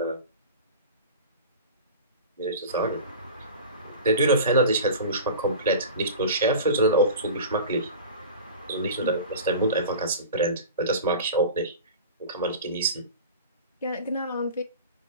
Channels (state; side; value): inverted; both; correlation -0.34